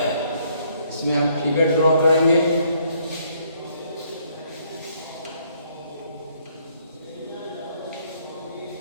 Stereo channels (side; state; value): both; inverted; correlation -0.67